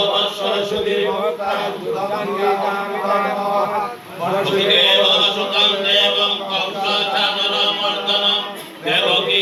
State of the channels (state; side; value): identical; both; correlation 1.00